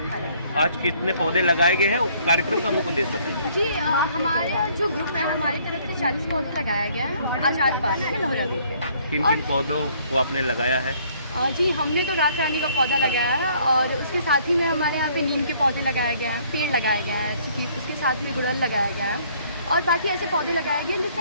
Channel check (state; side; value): inverted; both; correlation -0.62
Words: कार्यरत। आज कितने पौधे लगाए गए हैं? कार्यक्रम का मुख्य उद्देश्य बताइए। जी हमारे जो ग्रुप है, हमारी तरफ से 40 पौधे लगाया गया है आजाद पार्क में लोहरा में। किन किन पौधों को आपने लगाया है? जी हमने तो रात रानी का पौधा लगाया है और उसके साथ ही में हमारे यहाँ पे नीम के पौधे लगाए गए हैं, पेड़ लगाया गया है, उसके साथ में गुड़हल लगाया गया है और बाकी ऐसे पौधे लगाए गए